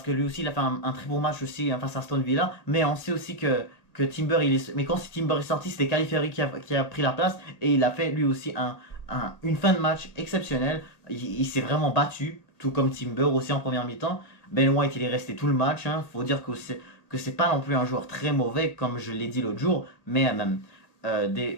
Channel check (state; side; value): late; right; 1.9 ms